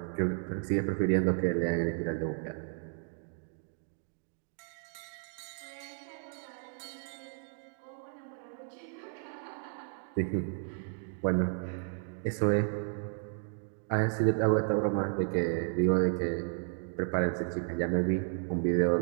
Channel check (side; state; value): left; silent; 56 dB below the other